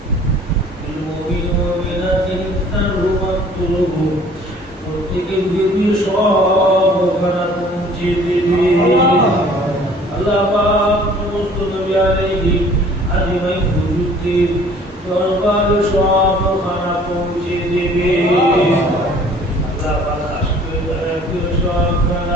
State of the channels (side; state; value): both; normal; correlation 0.53